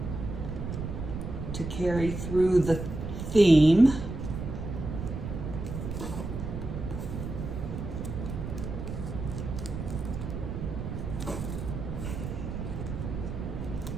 to carry through the theme.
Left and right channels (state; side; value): noise; right; rumble, 6 dB below the sound